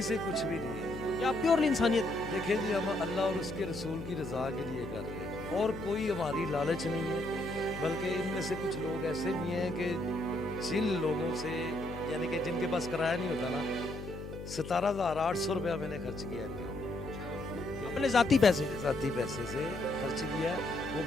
से कुछ भी नहीं है, या प्योरली इंसानियत? देखिए जी, हम अल्लाह और उसके रसूल की रज़ा के लिए कर रहे हैं और कोई हमारी लालच नहीं है। बल्कि इनमें से कुछ लोग ऐसे भी हैं कि जिन लोगों से, यानी कि जिनके पास किराया नहीं होता ना, 17,800 रुपया मैंने खर्च किया है अपने ज़ाती पैसे से खर्च किया। वो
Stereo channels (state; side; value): noise; left; hum, 10 dB below the sound